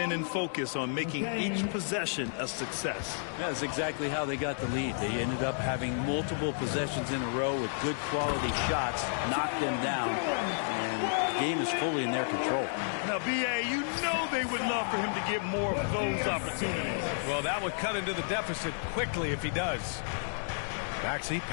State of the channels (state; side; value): silent; right; digital silence